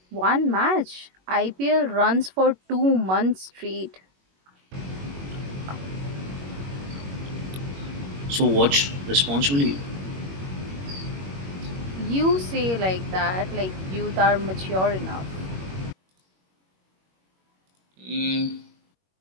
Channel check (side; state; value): left; late; 21 ms